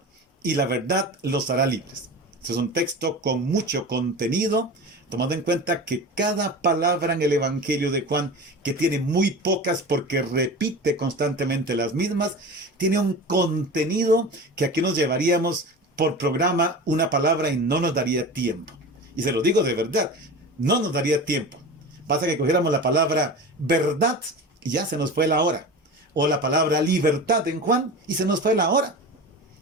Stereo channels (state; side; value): normal; both; correlation 0.31